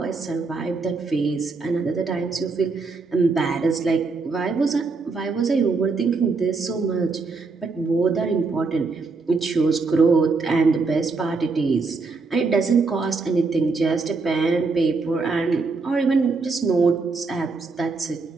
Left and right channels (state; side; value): quieter; left; 4.2 dB